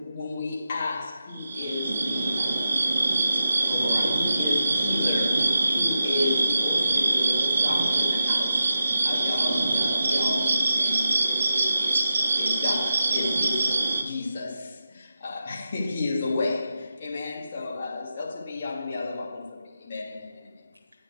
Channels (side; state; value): both; inverted; correlation -0.88